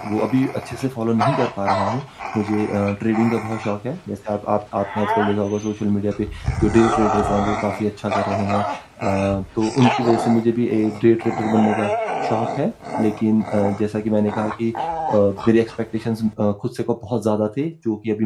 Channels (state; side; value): identical; both; correlation 1.00